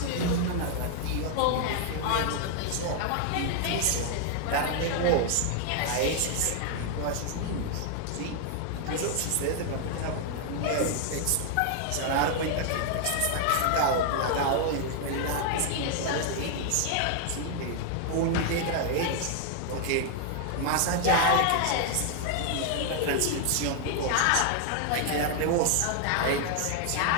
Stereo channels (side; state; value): both; different; correlation 0.00